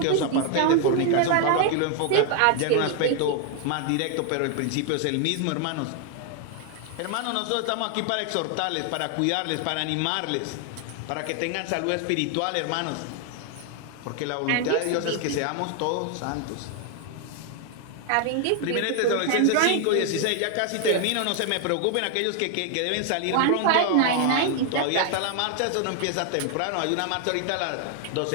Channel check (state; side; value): different; both; correlation 0.00